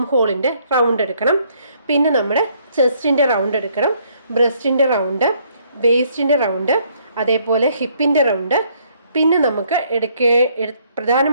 ഹോളിൻ്റെ റൗണ്ട് എടുക്കണം. പിന്നെ നമ്മുടെ ചെസ്റ്റിൻ്റെ റൗണ്ട് എടുക്കണം, ബ്രസ്റ്റിൻ്റെ റൗണ്ട്, വേസ്റ്റിൻ്റെ റൗണ്ട്, അതേപോലെ ഹിപ്പിൻ്റെ റൗണ്ട്. പിന്നെ നമുക്ക്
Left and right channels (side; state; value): both; inverted; correlation -0.66